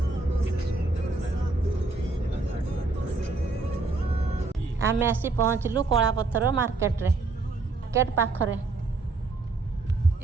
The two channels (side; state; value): left; quieter; 3.5 dB